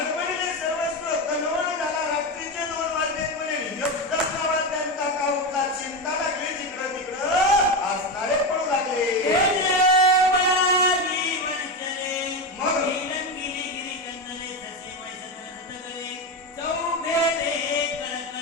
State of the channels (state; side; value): normal; both; correlation 0.15